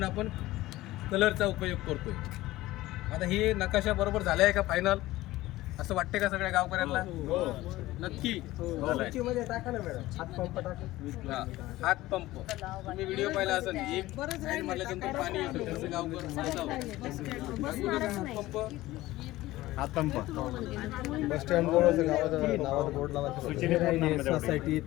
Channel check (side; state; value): right; quieter; 17.2 dB